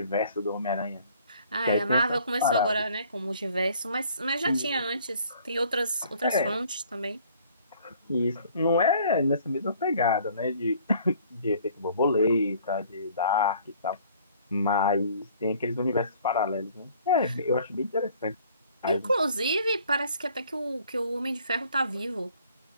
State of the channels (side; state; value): both; inverted; correlation -0.57